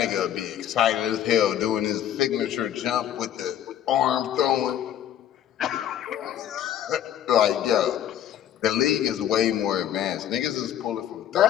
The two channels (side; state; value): right; quieter; 10.7 dB